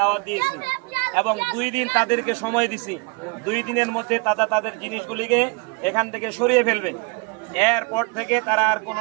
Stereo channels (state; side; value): quieter; left; 30.9 dB